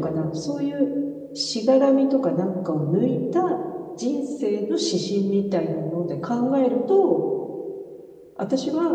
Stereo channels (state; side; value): identical; both; correlation 1.00